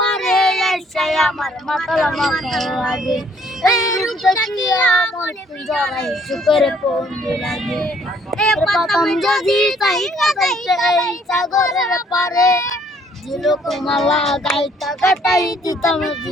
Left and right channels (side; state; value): both; normal; correlation 0.63